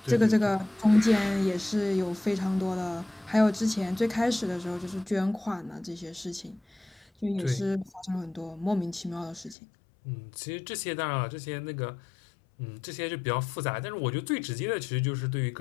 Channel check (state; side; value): drops out; right; at 9.6 s